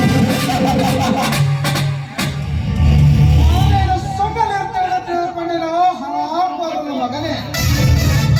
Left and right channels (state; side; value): identical; both; correlation 1.00